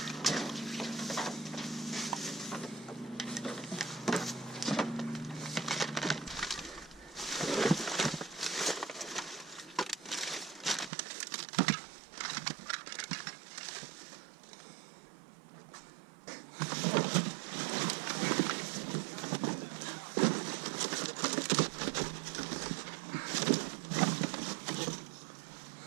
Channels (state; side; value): drops out; left; at 10.9 s